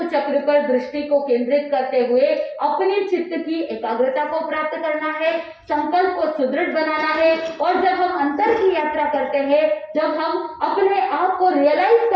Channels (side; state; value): both; identical; correlation 1.00